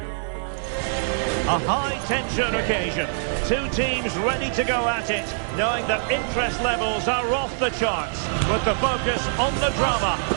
A high-tension occasion. Two teams ready to go at it, knowing that interest levels are off the charts, with the focus on the drama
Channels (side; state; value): left; silent; 59 dB below the other